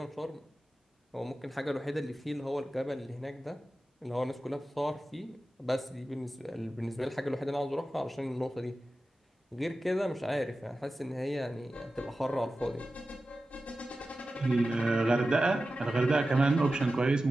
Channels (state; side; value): normal; both; correlation 0.94